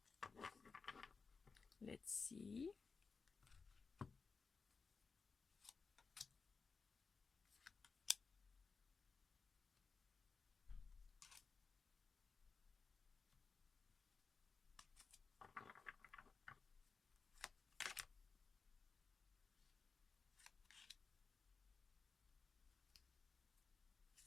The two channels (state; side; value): quieter; right; 4.8 dB